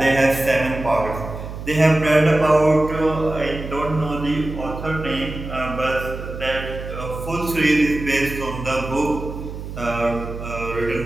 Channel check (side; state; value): right; noise; hum, 9 dB below the sound